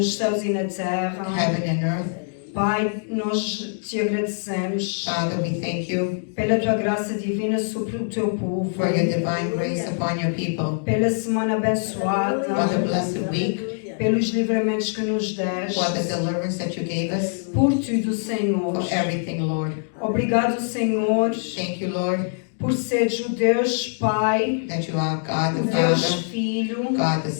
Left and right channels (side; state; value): right; silent; 63 dB below the other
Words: céus e na terra. heaven and earth. Pai, nós te agradecemos Father, we thank you pela tua graça divina sobre o teu povo, for your divine grace upon your people, pela semana for the abençoada, blessed week, pelos livramentos que nos deste, for the deliverance that you gave us, por tudo, Senhor. for everything, Lord. Obrigado, Senhor, Thank you, Lord, por seres o Deus Pai, that you are God o the Deus Father, Filho, God the